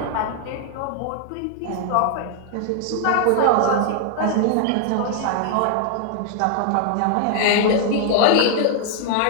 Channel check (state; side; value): different; both; correlation 0.00